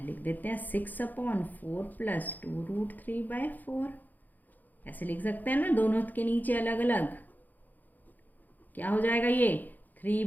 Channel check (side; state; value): right; late; 0.084 ms